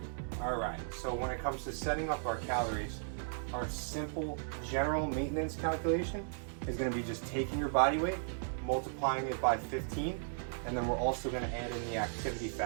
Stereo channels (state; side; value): silent; left; digital silence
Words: Alright, so when it comes to setting up our calories, our simple general maintenance calculation is going to be just taking your body weight, multiplying it by 15, and then we're also going to add in the activity